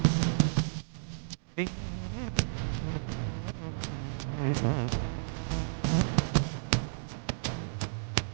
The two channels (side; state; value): left; silent; digital silence